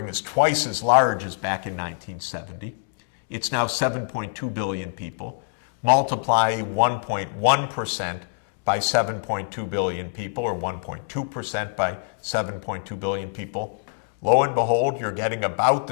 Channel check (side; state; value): right; silent; digital silence